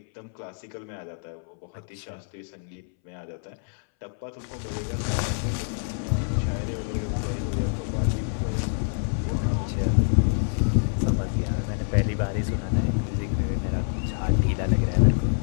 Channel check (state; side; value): silent; right; 61 dB below the other